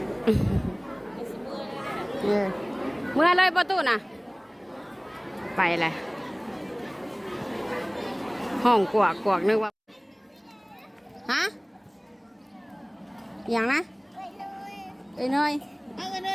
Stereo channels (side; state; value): both; identical; correlation 1.00